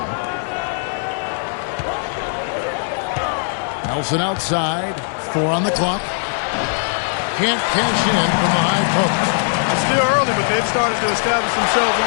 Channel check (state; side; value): silent; right; digital silence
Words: Nelson outside. 4 on the clock. Can't cash in from the high post. It's still early, but they've started to establish themselves